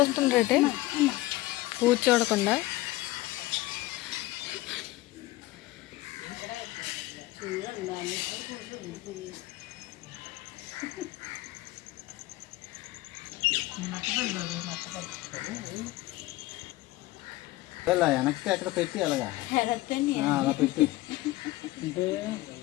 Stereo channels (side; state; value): right; quieter; 18.2 dB